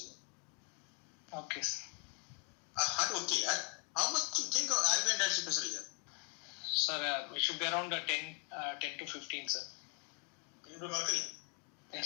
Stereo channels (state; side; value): quieter; right; 37.5 dB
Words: Okay, sir. Okay, how much you think of RV interstitial pressure here? Sir, it should be around 10 to 15, sir. Into mercury.